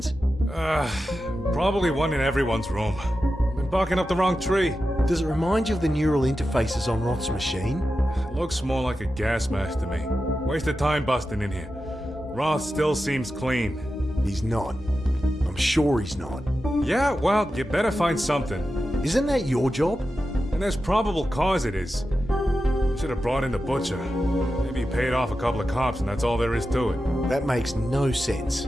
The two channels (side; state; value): both; normal; correlation 0.91